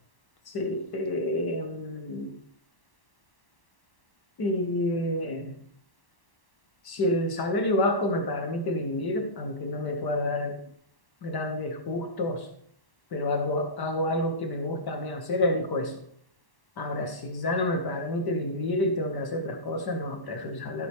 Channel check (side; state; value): right; late; 1.1 ms